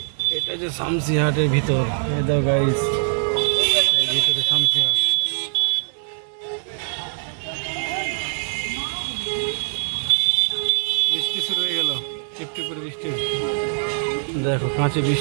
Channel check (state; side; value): silent; left; digital silence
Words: এটা যে শামসি হাটের ভিতর, এই দাও গাইস, এই ভিতরে শামসি হাট। বৃষ্টি শুরু হয়ে গেল, টিপটিপ করে বৃষ্টি, দেখো কাঁচে